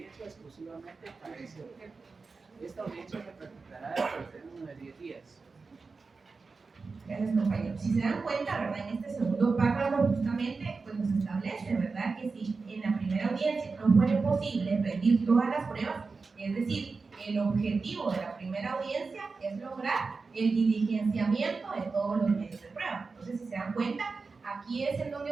exclusivamente para ese objeto. Esta audiencia se practicará dentro del término de 10 días. Gracias, compañero. Si se dan cuenta, ¿verdad?, en este segundo párrafo justamente pues nos establece, ¿verdad?, que si en la primera audiencia no fuera posible rendir todas las pruebas, es decir, el objetivo de la primera audiencia es lograr el diligenciamiento de todos los medios de prueba. Entonces, si se dan cuenta, aquí es en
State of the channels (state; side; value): quieter; left; 4.3 dB